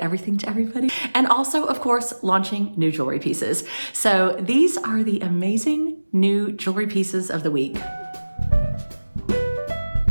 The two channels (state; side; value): inverted; both; correlation -1.00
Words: to everybody, and also, of course, launching new jewelry pieces. So these are the amazing new jewelry pieces of the week.